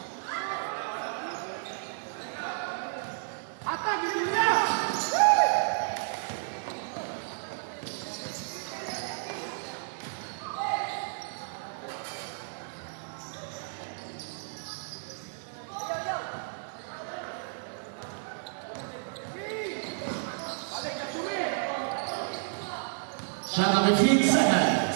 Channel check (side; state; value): left; silent; digital silence